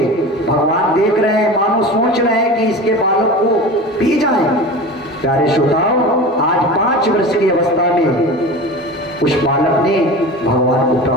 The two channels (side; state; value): both; normal; correlation 0.33